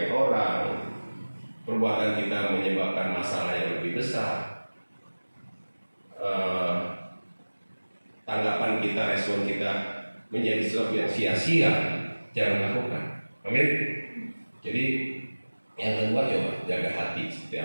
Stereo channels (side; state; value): both; inverted; correlation -1.00